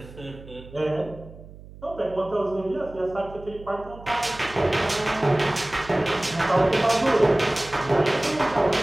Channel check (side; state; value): right; noise; hum, 18 dB below the sound